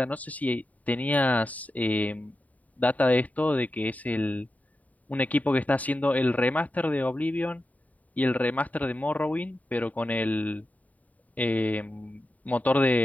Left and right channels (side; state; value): right; late; 0.072 ms